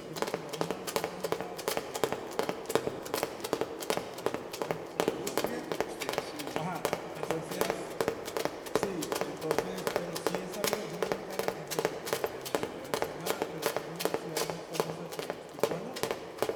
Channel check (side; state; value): both; identical; correlation 1.00